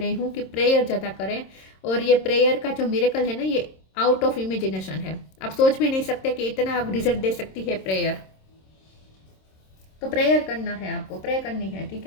हूँ कि प्रेयर ज़्यादा करें, और ये प्रेयर का जो मिरेकल है ना, ये आउट ऑफ इमेजिनेशन है। आप सोच भी नहीं सकते कि इतना आप रिजल्ट दे सकती है प्रेयर। तो प्रेयर करना है आपको, प्रे करनी है, ठीक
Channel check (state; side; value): late; right; 26 ms